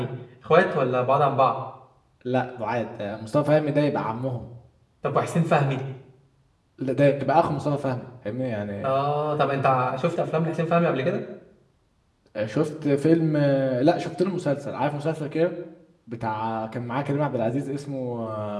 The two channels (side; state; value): both; identical; correlation 1.00